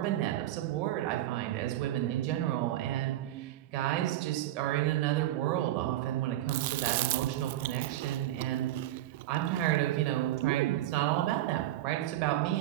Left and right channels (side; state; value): left; quieter; 14.1 dB